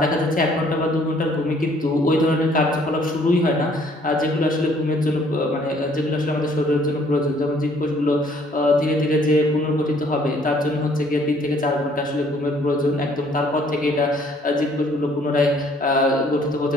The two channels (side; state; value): both; normal; correlation 0.61